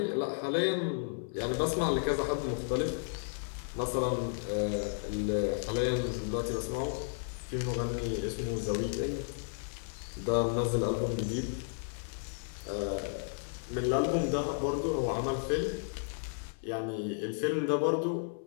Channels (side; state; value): right; silent; 56 dB below the other